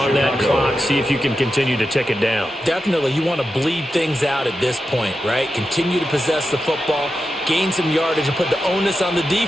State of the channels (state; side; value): normal; both; correlation 0.90